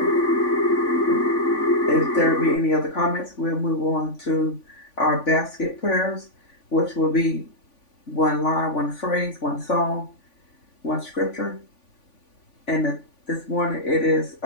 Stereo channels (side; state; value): right; late; 3.5 ms